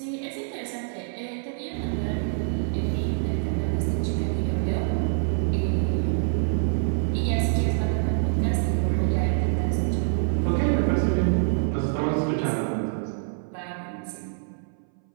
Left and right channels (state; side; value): silent; left; 60 dB below the other